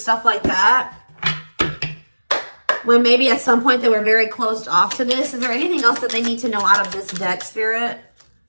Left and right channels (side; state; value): both; inverted; correlation -1.00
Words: like that. When maybe at some point they were very closed off to this. Is there anything else that they need to know out of this deck, Spirit?